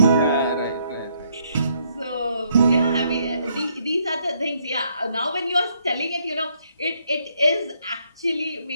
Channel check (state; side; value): inverted; both; correlation -0.71